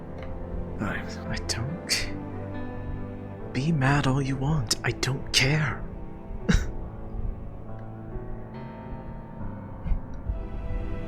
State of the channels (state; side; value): identical; both; correlation 1.00